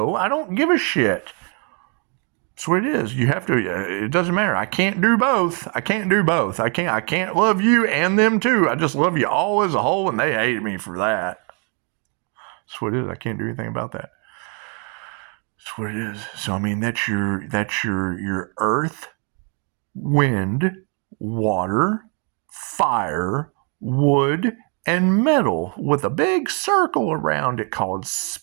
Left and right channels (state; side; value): quieter; left; 37.6 dB